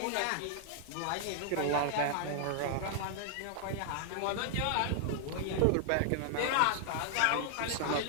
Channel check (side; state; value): both; different; correlation -0.01